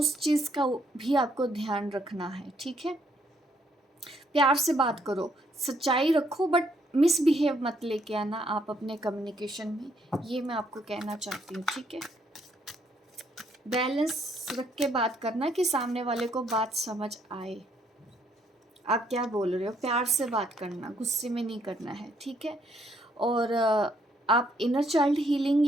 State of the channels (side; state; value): both; normal; correlation 0.70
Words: चीज़ का भी आपको ध्यान रखना है। ठीक है, प्यार से बात करो, सच्चाई रखो, बट मिसबिहेव मत लेके आना आप अपने कम्युनिकेशन में, ये मैं आपको कहना चाहती हूँ। ठीक है, बैलेंस रख के बात करना कि सामने वाले को बात समझ आए, आप क्या बोल रहे हो। प्यार से बात करना, गुस्से में नहीं करना है। ठीक है, और आप इनर चाइल्ड हीलिंग